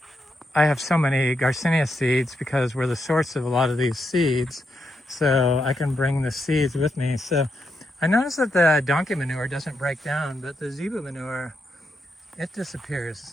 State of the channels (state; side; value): normal; both; correlation 0.82